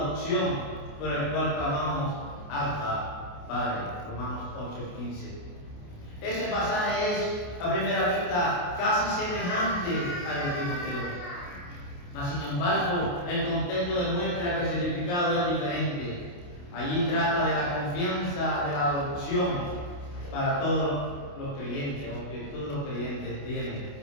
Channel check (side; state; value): right; late; 28 ms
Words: por el cual clamamos Abba, Padre. Romanos 8:15. Ese pasaje es, a primera vista, casi semejante al de Timoteo. Mas, sin embargo, el contexto demuestra que el significado es diferente. Allí trata de la confianza de la adopción para todos los creyentes, o que todos los creyentes